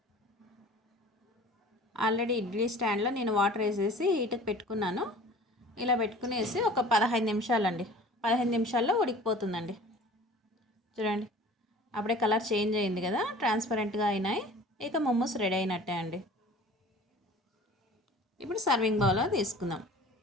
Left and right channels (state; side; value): normal; both; correlation 0.45